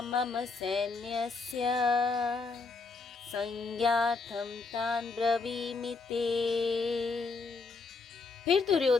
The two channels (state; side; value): quieter; right; 4.2 dB